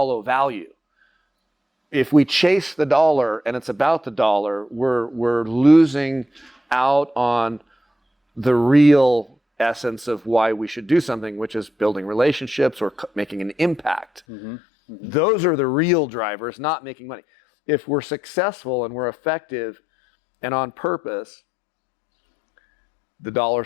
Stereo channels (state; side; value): drops out; right; at 14.2 s